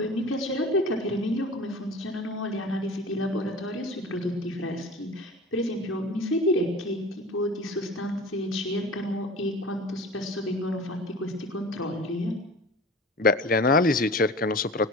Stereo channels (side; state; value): both; normal; correlation 0.37